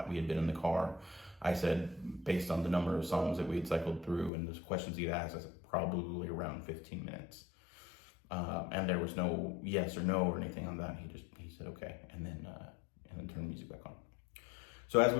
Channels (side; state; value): right; drops out; at 4.3 s